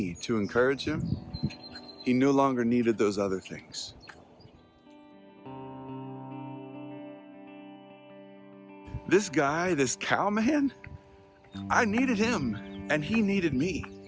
to encourage him, he no longer needed those other things. This guy, this cow man, I needed him and he needed me.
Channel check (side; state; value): both; identical; correlation 1.00